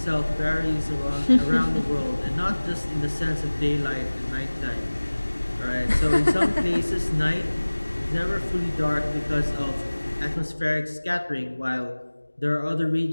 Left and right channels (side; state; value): both; inverted; correlation -1.00